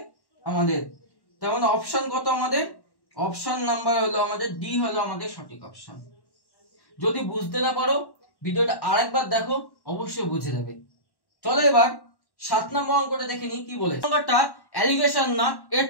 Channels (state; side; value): late; right; 1.1 ms